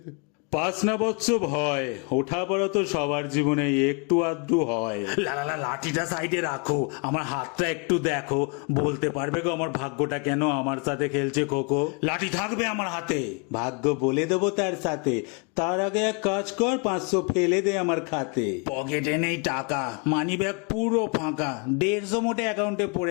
পাস না বৎস ভয়, ওঠা পড়া তো সবার জীবনে একটু আধটু হয়। লাঠিটা সাইডে রাখো, আমার হাতটা একটু দেখো, বলতে পারবে গো আমার ভাগ্যটা কেন আমার সাথে খেলছে খোকো? লাঠি থাকবে আমার হাতে, ভাগ্য বলে দেবো তার সাথে। তার আগে এক কাজ কর, 500 ফেলে দে আমার খাতে। পকেটে নেই টাকা, মানি ব্যাগ পুরো ফাঁকা, 150 মোটে অ্যাকাউন্টে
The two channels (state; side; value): quieter; right; 34.0 dB